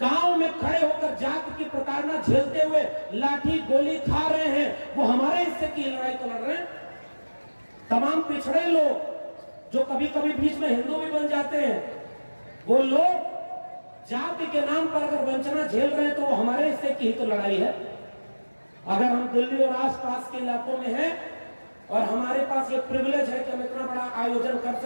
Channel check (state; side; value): inverted; both; correlation -1.00